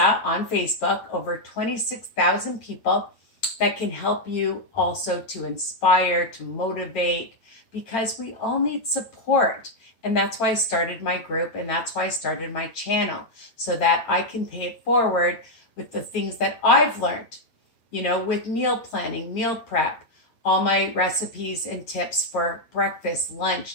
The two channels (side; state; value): right; late; 8.9 ms